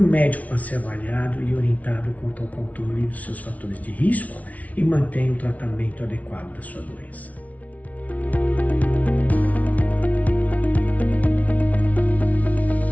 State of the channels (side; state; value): right; late; 0.070 ms